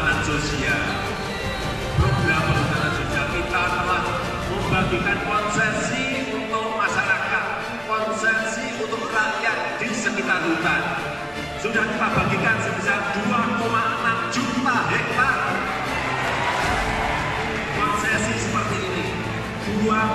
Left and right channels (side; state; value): both; identical; correlation 1.00